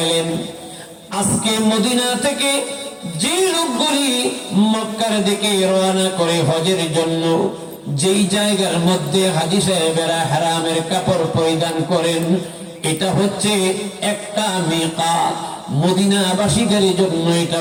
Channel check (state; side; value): identical; both; correlation 1.00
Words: আজকে মদিনা থেকে যে লোকগুলি মক্কার দিকে রওনা করে হজের জন্য, যেই জায়গার মধ্যে হাজী সাহেবেরা হারামের কাপড় পরিধান করেন, এটা হচ্ছে একটা মিকাত। মদিনাবাসীদের জন্য এটা